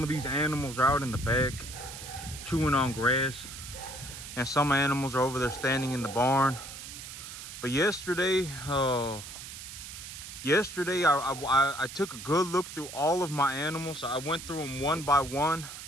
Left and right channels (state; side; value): noise; right; hiss, 11 dB below the sound